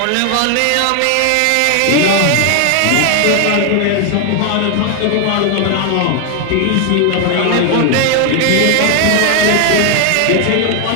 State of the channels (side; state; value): both; different; correlation 0.00